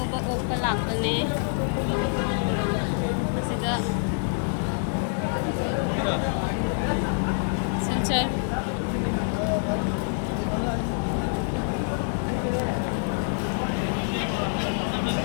ओपा लापने असिदा सिलचर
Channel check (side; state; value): right; silent; 61 dB below the other